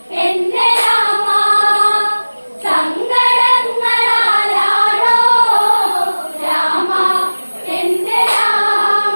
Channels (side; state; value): both; inverted; correlation -1.00